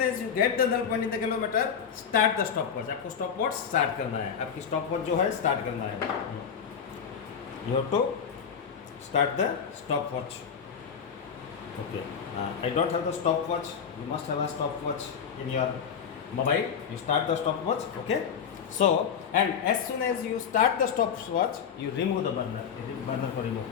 as you get the null point in the galvanometer, start the stopwatch. आपको stopwatch start करना है. आपकी stopwatch जो है start करना है. You have to start the stopwatch. Okay, I don't have the stopwatch. You must have a stopwatch in your mobile. You start the stopwatch. Okay. So, and as soon as you start the stopwatch, you remove the burner. It is burner for remove.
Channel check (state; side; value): quieter; right; 7.3 dB